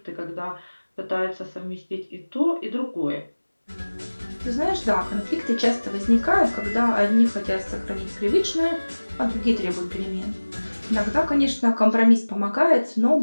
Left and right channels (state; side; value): inverted; both; correlation -1.00